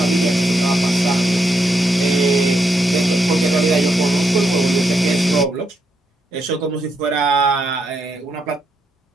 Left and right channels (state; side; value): normal; both; correlation 0.80